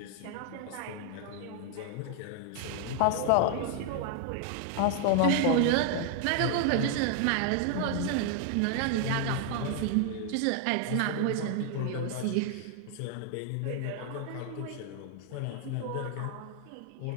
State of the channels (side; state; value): both; different; correlation 0.00